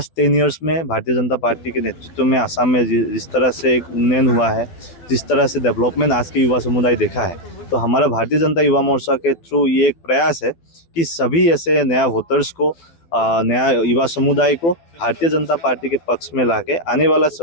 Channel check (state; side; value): late; right; 12 ms